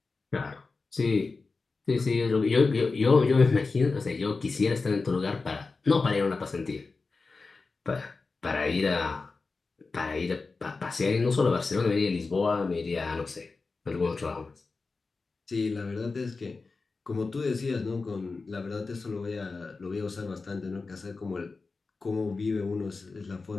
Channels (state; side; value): quieter; right; 4.1 dB